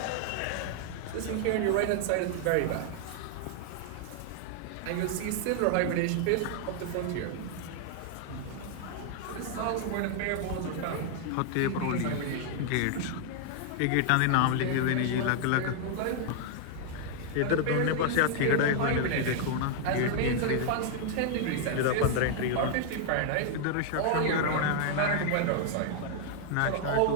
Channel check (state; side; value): different; both; correlation 0.00